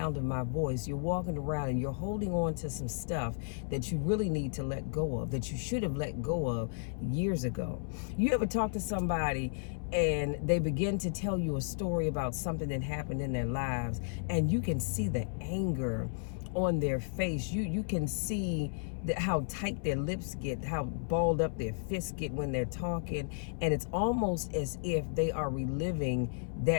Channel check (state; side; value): silent; right; 56 dB below the other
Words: of my voice, you're walking around and you're holding on to some stuff that you really need to let go of, that you should have let go of years ago. You ever talk to somebody and they begin to tell you a story about something that happened in their lives, and you can see the anger on their face. You can see how tight their lips get, how balled up their fists get when they're talking, and it's almost as if they are reliving